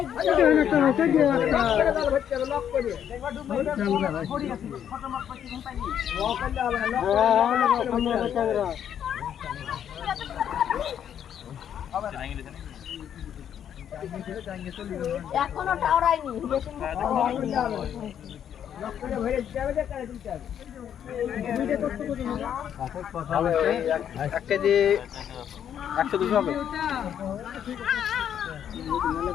এখনো টাওরাইনি এক কেজি 100-200 হবে।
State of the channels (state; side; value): quieter; right; 9.3 dB